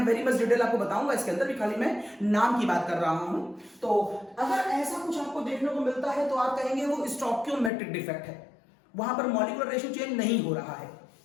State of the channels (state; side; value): drops out; right; at 7.7 s